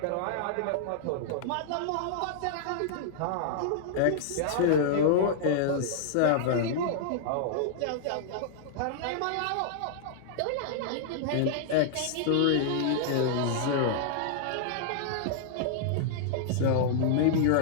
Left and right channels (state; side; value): different; both; correlation -0.01